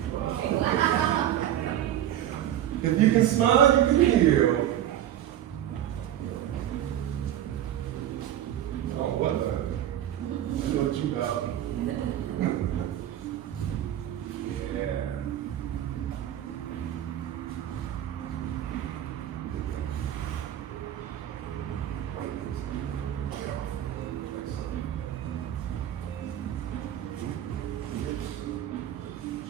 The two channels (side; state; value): left; quieter; 11.6 dB